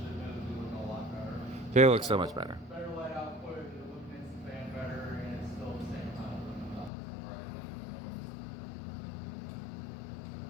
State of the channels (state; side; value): drops out; right; at 6.9 s